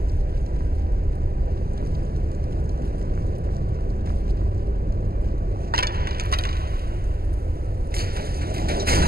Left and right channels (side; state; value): left; late; 0.45 ms